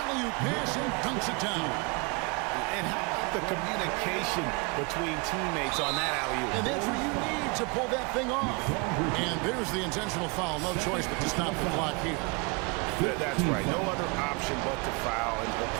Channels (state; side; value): quieter; left; 30.3 dB